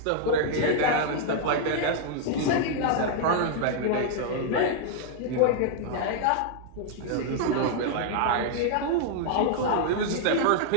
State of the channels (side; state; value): both; different; correlation -0.01